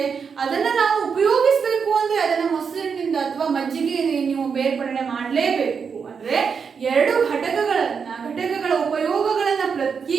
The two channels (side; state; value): left; quieter; 6.1 dB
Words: ಅದನ್ನ ನಾವು ಉಪಯೋಗಿಸಬೇಕು ಅಂದ್ರೆ ಅದನ್ನ ಮೊಸರಿನಿಂದ ಅಥವಾ ಮಜ್ಜಿಗೆ ನೀವು ಬೇರ್ಪಡಣೆ ಮಾಡಲೇಬೇಕು. ಅಂದ್ರೆ 2 ಘಟಕಗಳ ಉಪಯೋಗಗಳನ್ನ